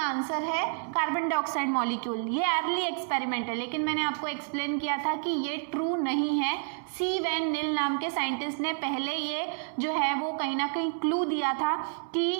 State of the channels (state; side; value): silent; left; 58 dB below the other